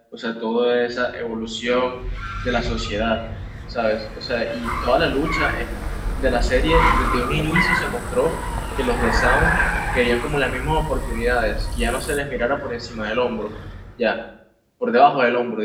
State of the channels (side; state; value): both; identical; correlation 1.00